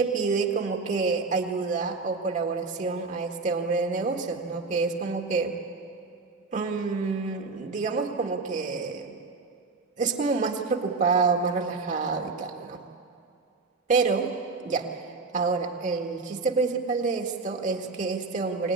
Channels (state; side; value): quieter; left; 4.2 dB